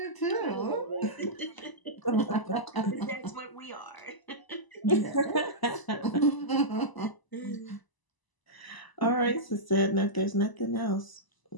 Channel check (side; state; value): right; late; 1.0 ms